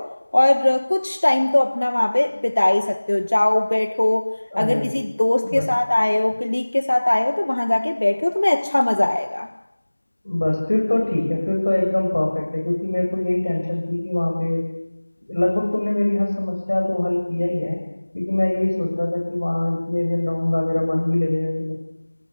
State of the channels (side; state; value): both; inverted; correlation -1.00